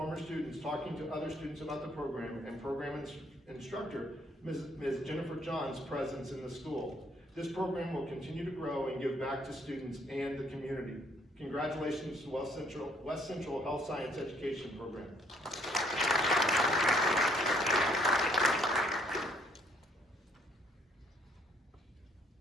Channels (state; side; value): normal; both; correlation 0.65